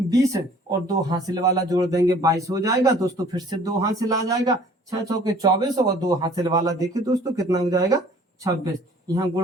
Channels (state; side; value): normal; both; correlation 0.53